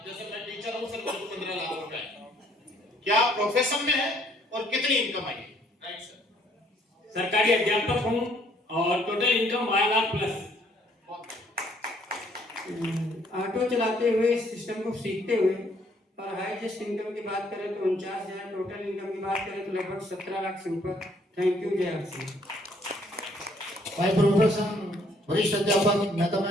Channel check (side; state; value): both; normal; correlation 0.64